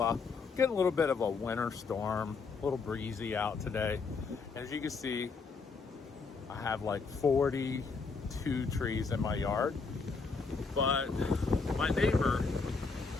getting a little bit of a winter storm, a little breezy out today. As you can see, I have like 42 trees in my yard, but my neighbor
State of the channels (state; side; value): quieter; right; 4.7 dB